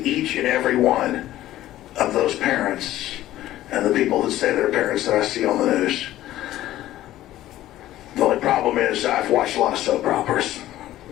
each and every one of those parents and the people that say they're parents that I see on the news. The only problem is I've watched a lot of soap operas,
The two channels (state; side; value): quieter; right; 14.3 dB